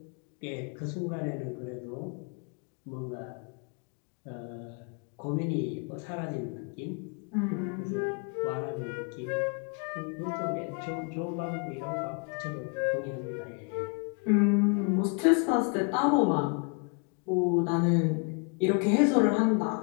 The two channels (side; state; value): right; quieter; 36.8 dB